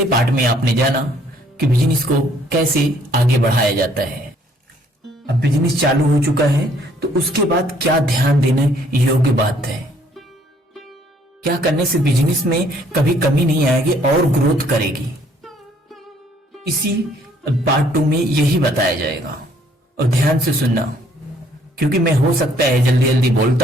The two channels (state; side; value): normal; both; correlation 0.63